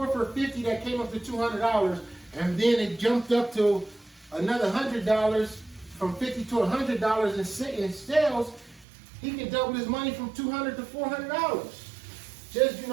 for $50 that came up to $200, and then it jumped up to another $100 from $50 to $100 in sales, he can double his money from $200 to $400.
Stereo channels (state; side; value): drops out; left; at 8.8 s